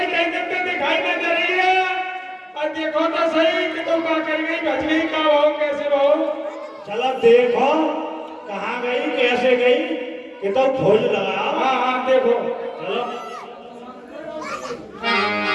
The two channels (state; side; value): identical; both; correlation 1.00